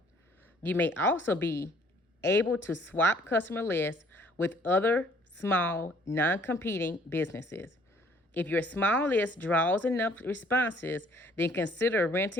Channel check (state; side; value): normal; both; correlation 0.59